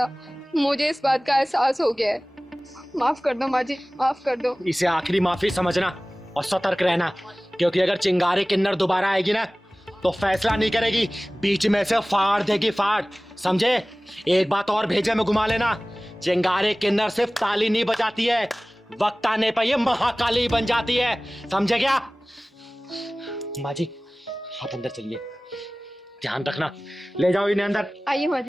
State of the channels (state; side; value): normal; both; correlation 0.98